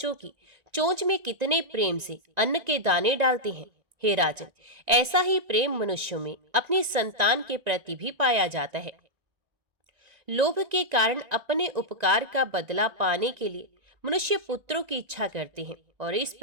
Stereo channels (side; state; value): left; late; 1.9 ms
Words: की चोंच में कितने प्रेम से अन्न के दाने डालते हैं। हे राजन, ऐसा ही प्रेम मनुष्यों में अपनी संतान के प्रति भी पाया जाता है। लोभ के कारण अपने उपकार का बदला पाने के लिए मनुष्य पुत्रों की इच्छा करते हैं और इस